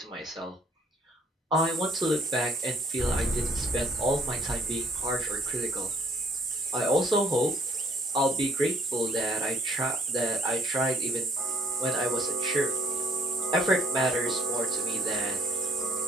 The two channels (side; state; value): both; normal; correlation 0.62